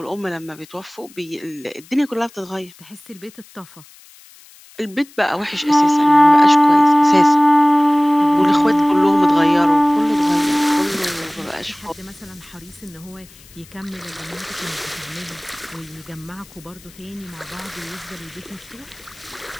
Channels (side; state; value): left; noise; hiss, 24 dB below the sound